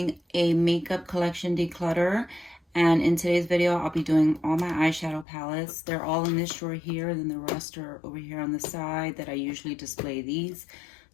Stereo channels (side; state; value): right; drops out; at 5.2 s